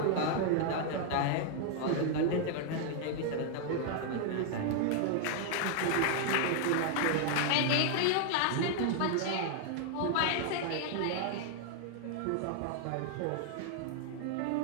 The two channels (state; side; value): different; both; correlation 0.00